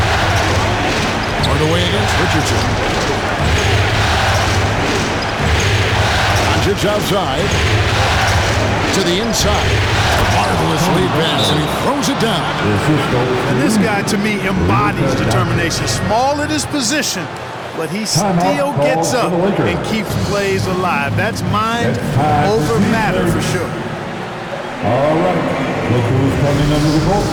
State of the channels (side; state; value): both; identical; correlation 1.00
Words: Hardaway against Richardson. Doncic outside. To the inside. Marvelous lead pass, and he throws it down. And this guy, to me, embodies determination. Small at his position, but he still gets up and keeps plays alive. That's mind over matter for sure. All right, look who's coming under the court.